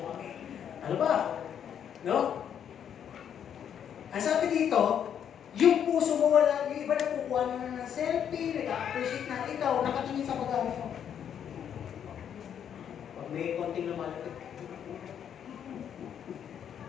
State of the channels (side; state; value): right; quieter; 8.8 dB